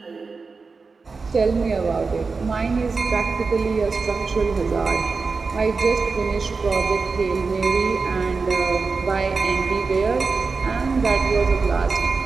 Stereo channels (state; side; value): quieter; left; 4.4 dB